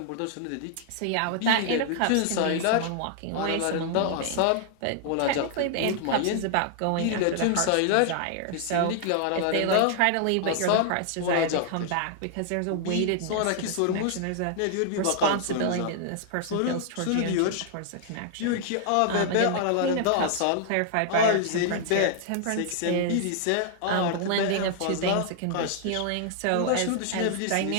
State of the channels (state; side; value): different; both; correlation -0.01